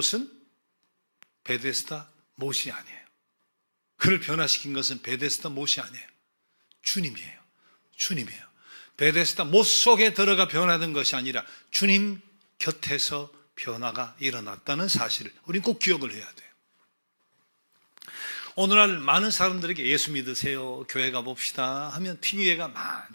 베데스다 못이 아니에요. 그를 변화시킨 것은 베데스다 못이 아니에요. 주님이에요. 주님이에요. 베데스다 못 속에 들어가 변화된 것이 아니라 주님 곁에서 변화가 일어났다는 사실을 우리는 꼭 기억을 해야 돼요. 오늘날 많은 사람들에게 예수 믿으세요, 교회 가봅시다 하면 핑계가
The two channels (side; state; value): both; inverted; correlation -1.00